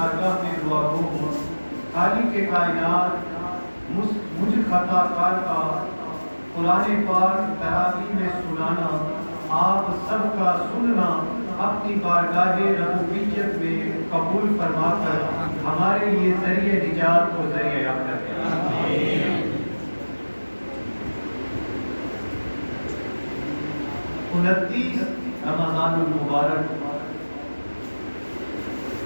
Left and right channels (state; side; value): inverted; both; correlation -1.00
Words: میں دعا گو ہوں. خالق کے کائنات مجھ خطا کار کا قرآن پاک تراویح میں سنانا، آپ سب کا سننا اپنی بارگاہ ربوبیت میں قبول فرما کر ہمارے لیے ذریعہ نجات اور ذریعہ یافتہ ہے. 29 رمضان المبارک